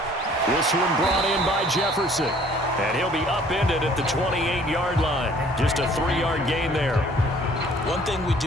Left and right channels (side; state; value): both; normal; correlation 0.56